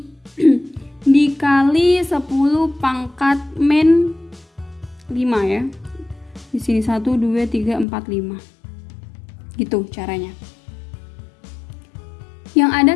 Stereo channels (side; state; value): right; drops out; at 7.9 s